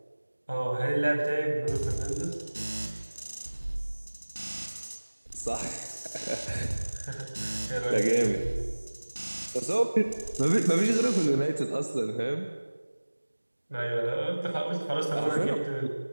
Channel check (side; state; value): both; inverted; correlation -1.00